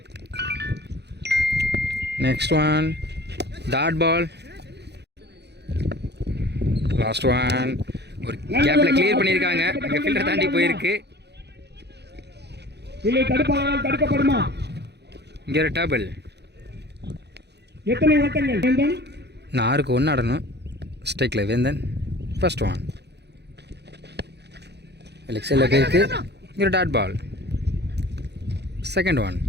Next one dot ball. Last one ஒரு கேப்பில் கிளியர் பண்ணியிருக்காங்க. அங்கே ஃபில்டர் தாண்டி போயிருக்கு. இங்கே ஒரு டேபிள். 4க்கு 1 ஆடணும். ஸ்ட்ரைக்கில் வேந்தன் ஃபர்ஸ்ட் ஒன் லெக் சைடில் போயிருக்கு. இங்கே ஒரு dot ball. Second one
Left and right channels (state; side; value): late; left; 0.49 ms